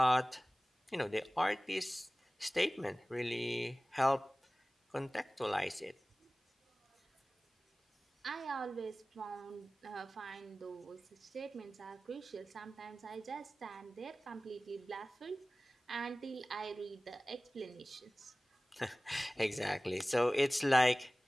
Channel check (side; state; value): both; normal; correlation 0.98